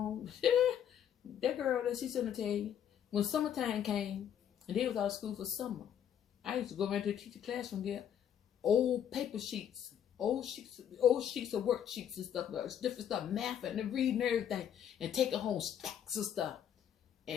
that girl that she's gonna tell you, when summertime came and they was out of school for summer, I used to go around to the teacher classroom, get old paper sheets, old sheets of worksheets and stuff, different stuff, math and reading everything, and take it home, stacks of stuff,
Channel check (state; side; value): quieter; right; 9.5 dB